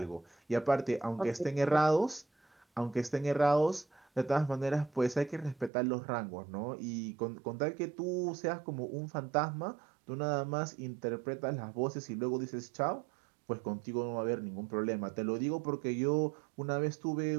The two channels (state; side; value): drops out; left; at 5.7 s